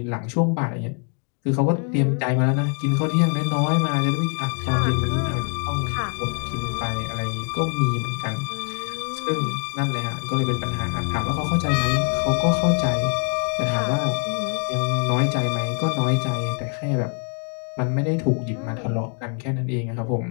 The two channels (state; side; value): quieter; right; 39.9 dB